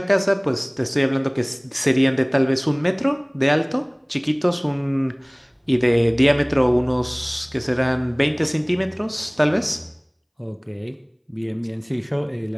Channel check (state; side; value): identical; both; correlation 1.00